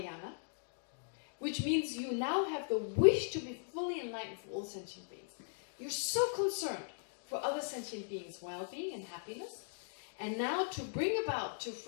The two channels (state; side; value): silent; right; digital silence